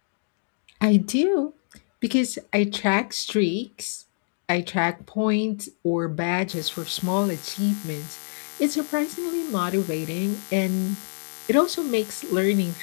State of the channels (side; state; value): right; silent; digital silence